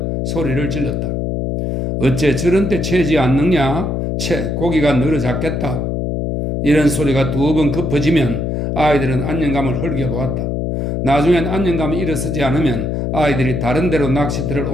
소리를 질렀다. 어째 저런 때 채지 않느냐? 고기가 늘어잡겠다. 이런 소리가 두 번 급해지면 아이들은 안녕감을 흘겨보았다. 나중엔 안녕감이 일어서지 않으면 아이들이 다른 데로 낚시터를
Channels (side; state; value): left; noise; hum, 1 dB below the sound